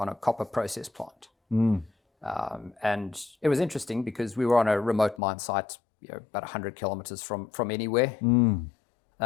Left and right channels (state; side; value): drops out; right; at 5.2 s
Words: a copper process plant. And it was interesting because we were on a remote mine site, about 100 kilometers from anywhere.